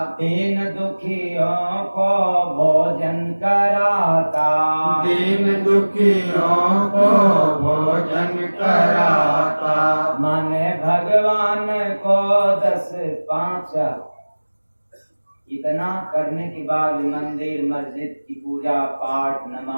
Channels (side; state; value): both; inverted; correlation -1.00